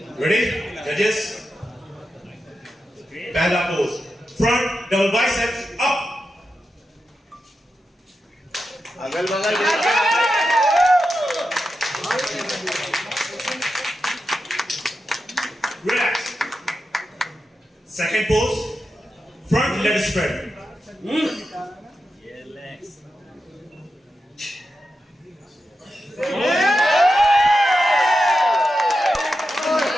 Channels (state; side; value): normal; both; correlation 0.89